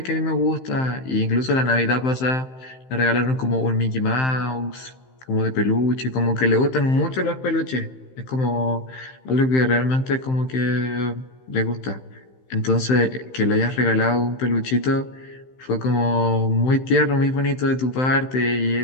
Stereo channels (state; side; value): late; right; 15 ms